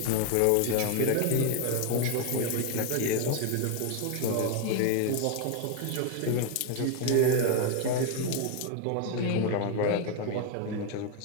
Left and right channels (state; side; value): different; both; correlation 0.01